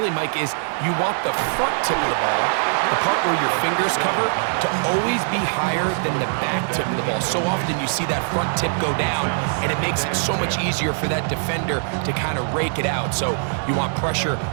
Mike, is you want the front tip of the ball, the part where your fingers cover, to always be higher than the back tip of the ball. So often you see that front tip go down, and it makes it so much easier for that defender to kind of rake it out. So you want pressure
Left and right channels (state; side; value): silent; left; 64 dB below the other